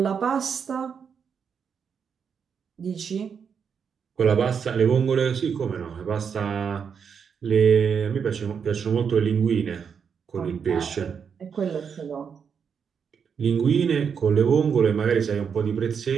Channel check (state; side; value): quieter; left; 6.8 dB